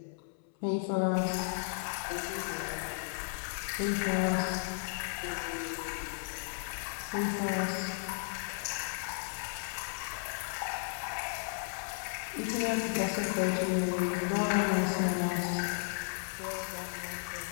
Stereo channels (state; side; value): silent; right; 55 dB below the other